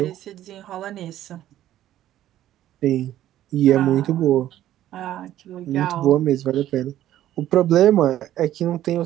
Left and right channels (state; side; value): quieter; left; 12.8 dB